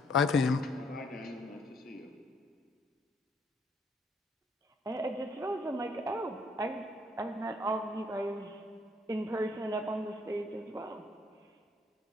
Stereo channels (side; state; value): both; normal; correlation 0.67